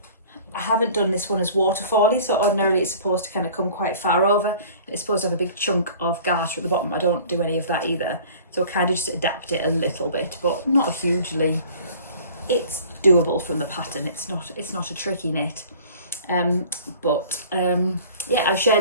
I haven't done this one as waterfally, so ordinarily it's supposed to kind of come quite far over. It's supposed to have a big chunk of garter at the bottom. I don't do any of that either, so I kind of just adapt it a little bit, but not hugely. It's doable from the pattern. It's not a tricky knit. Yeah, I've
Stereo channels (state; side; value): inverted; both; correlation -0.47